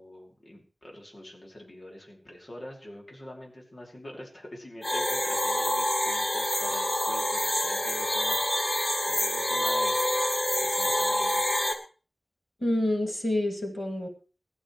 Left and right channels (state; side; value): normal; both; correlation 0.96